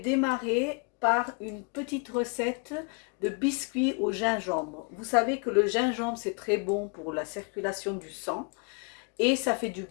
par une petite recette de biscuits au gingembre. Vous savez que le gingembre c'est très bon pour la circulation du sang. Et ça fait du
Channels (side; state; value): right; quieter; 35.2 dB